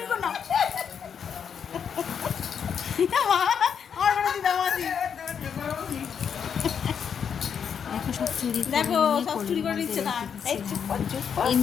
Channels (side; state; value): right; quieter; 7.4 dB